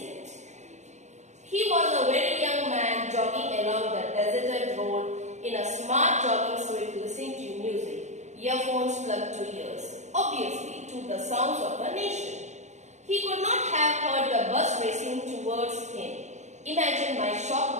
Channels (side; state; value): left; late; 0.34 ms